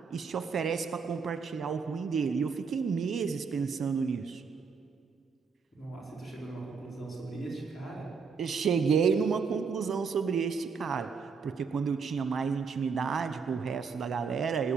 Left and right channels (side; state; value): left; quieter; 5.5 dB